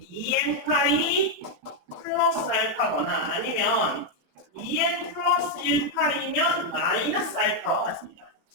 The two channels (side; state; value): left; late; 27 ms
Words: 파이 플러스 알파거나 아니면 2n 플러스 1파이면 마이너스 알파와 같습니다.